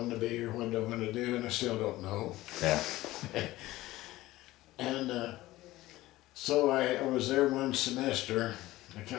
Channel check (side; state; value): right; quieter; 17.3 dB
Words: to be or what I wanted to do, and I still don't know. Yeah. And so I was there one semester. I